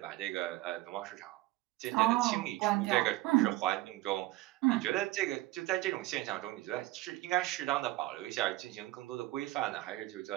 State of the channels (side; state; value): left; quieter; 18.5 dB